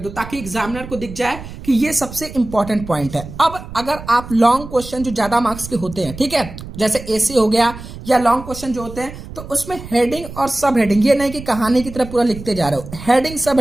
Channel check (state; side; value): noise; right; rumble, 13 dB below the sound